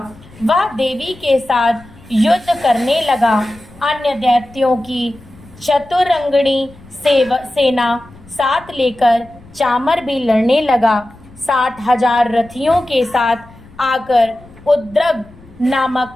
वह देवी के साथ युद्ध करने लगा। अन्य दैत्यों की चतुरंगणी सेना साथ लेकर चामर भी लड़ने लगा। 60,000 रथियों के साथ आकर उद्रग नामक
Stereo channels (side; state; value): left; noise; rumble, 23 dB below the sound